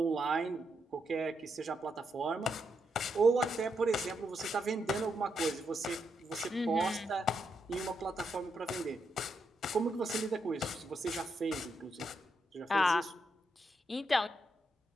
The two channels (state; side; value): normal; both; correlation 0.81